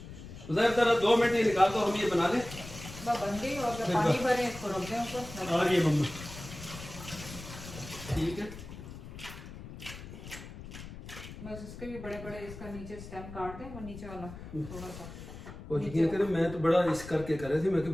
जरा 2 मिनट ही निकाल दो, हम ये बना लें। बन गई और पानी भरे इसको रख दें ऊपर। आ रही है मम्मा, ठीक है। बस इसके भी बड़े बड़े इसका नीचे स्टेम काट दें, वो नीचे वाला थोड़ा सा। और यकीन करें मैं तो बड़ा इस करके कर रहे थे, मैं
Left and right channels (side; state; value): left; noise; rumble, 13 dB below the sound